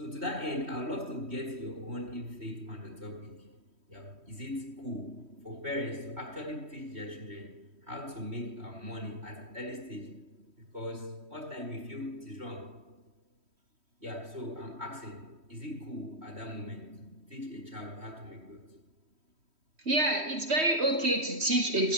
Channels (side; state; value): left; late; 3.1 ms